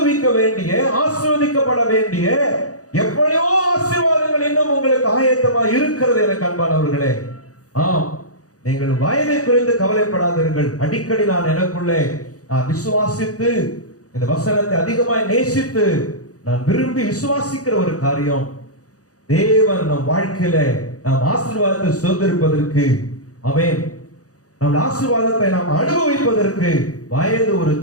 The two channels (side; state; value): right; late; 0.67 ms